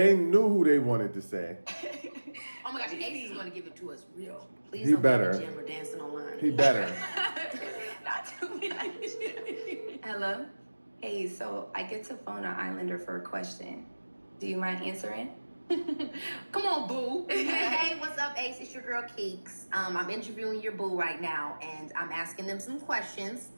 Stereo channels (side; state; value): both; inverted; correlation -1.00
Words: knew who they wanted to say. Oh my gosh, Ace is going to give it to us real. Please He don't better. be in the gym or dancing online. He better. Not too much. Hello? Hey, so I get to phone an Islander for a question. Do you mind answering? Come on, boo. Hey, what's up, Ace? It's your girl, Keeks. I'm interviewing your boo right now, and I'm asking them some questions.